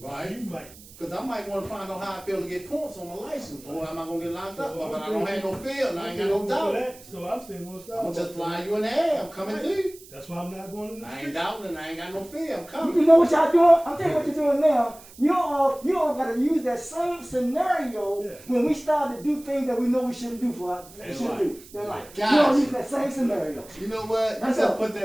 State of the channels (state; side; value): noise; right; hiss, 21 dB below the sound